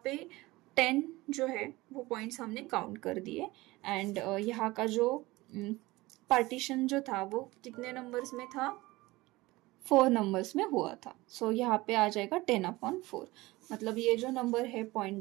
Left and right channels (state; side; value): quieter; left; 20.3 dB